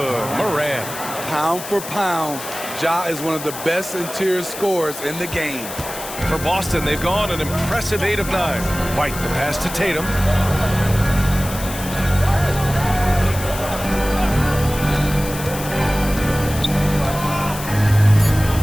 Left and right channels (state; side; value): noise; left; hiss, 10 dB below the sound